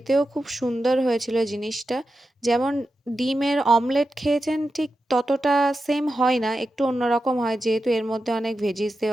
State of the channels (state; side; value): normal; both; correlation 0.90